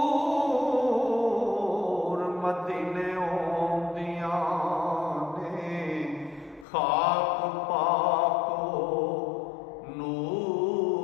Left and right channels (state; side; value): drops out; right; at 6.7 s